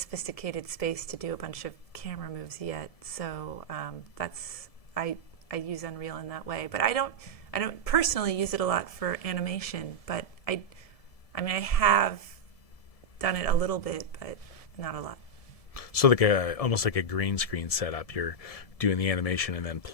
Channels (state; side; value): late; right; 1.7 ms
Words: space to do a bunch of camera moves yet. So that's I use Unreal in that way, but I don't personally use it a lot for animation. But I have done it a little bit, but not a lot. So like almost like a green screen setup. You're doing the animation and then